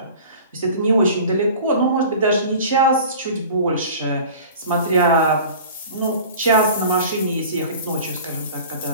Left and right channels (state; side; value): inverted; both; correlation -0.41